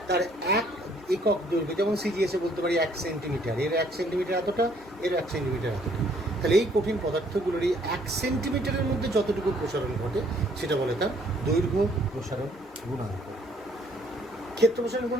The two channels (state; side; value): normal; both; correlation 0.63